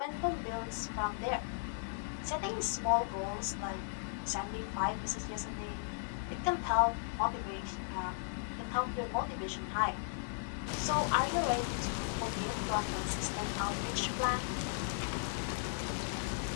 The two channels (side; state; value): right; silent; digital silence